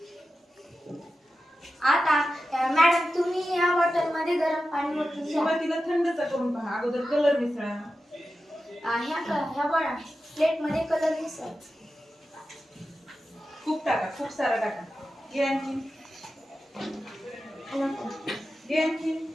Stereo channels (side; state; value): both; normal; correlation 0.92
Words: आता मॅडम तुम्ही या बॉटल मध्ये गरम पाणी ओतून घ्या। सुरुवातीला थंडचा करून पहा, अगोदर कलर मिसळा। ह्या बघा प्लेट मध्ये कलर मिसळ। खूप टाका, खूप सारा टाका। घे आणखी, घे आणखी।